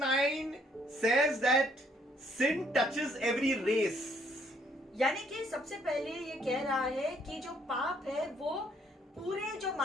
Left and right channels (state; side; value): normal; both; correlation 0.66